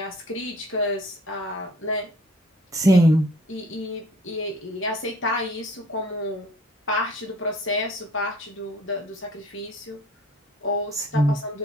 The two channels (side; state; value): both; normal; correlation 0.52